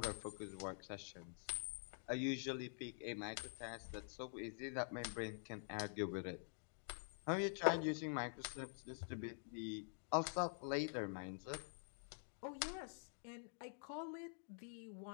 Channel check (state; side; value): silent; right; digital silence